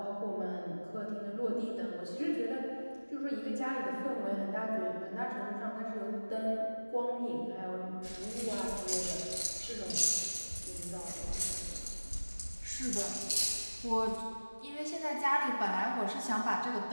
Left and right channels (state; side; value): inverted; both; correlation -1.00